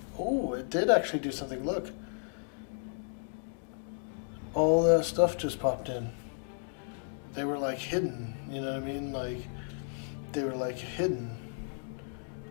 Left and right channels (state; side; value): silent; right; digital silence